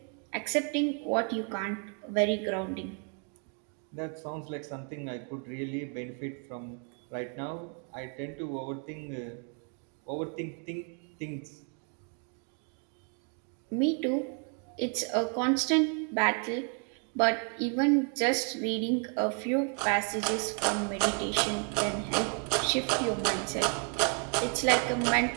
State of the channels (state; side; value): quieter; left; 39.2 dB